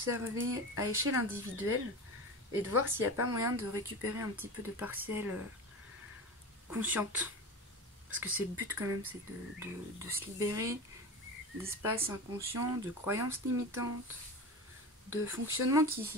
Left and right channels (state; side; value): normal; both; correlation 0.29